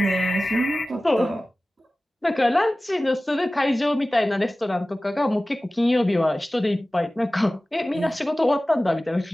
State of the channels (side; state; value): both; normal; correlation 0.97